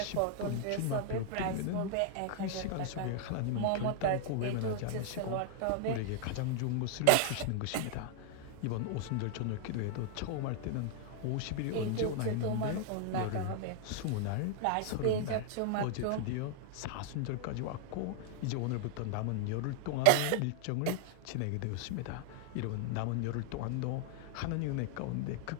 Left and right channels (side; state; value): both; different; correlation 0.00